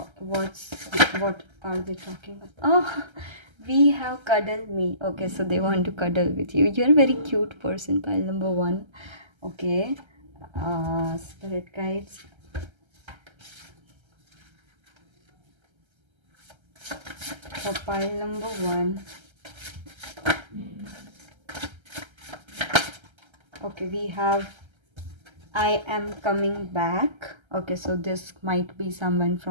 are they talking about? Oh, we have cuddle me. Okay, so they want to cuddle with you. You're a very cute person, pile number one. Okay, spirit guides, for pile number one. Okay, we have I am coming back. Okay, so this might be someone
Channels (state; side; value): late; left; 1.3 ms